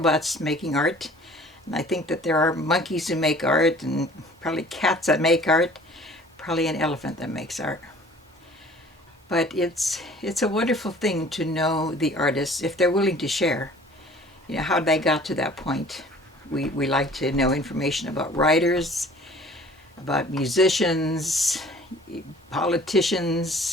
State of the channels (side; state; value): both; normal; correlation 0.50